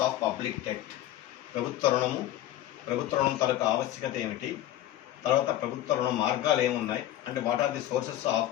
of public debt. ప్రభుత్వ రుణం తాలూకు ఆవశ్యకత ఏమిటి, తర్వాత ప్రభుత్వ రుణ మార్గాలు ఏమున్నాయి అంటే what are the sources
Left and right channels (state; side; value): quieter; right; 13.5 dB